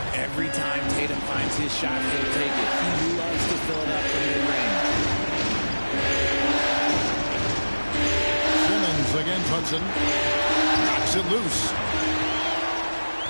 Every time Tatum finds his shot, he'll take it. He loves to fill it up from mid-range. Simmons against Hudson. Knocks it loose.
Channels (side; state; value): both; inverted; correlation -1.00